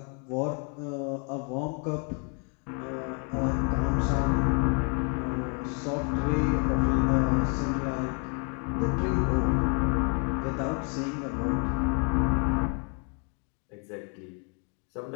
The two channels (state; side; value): quieter; right; 38.7 dB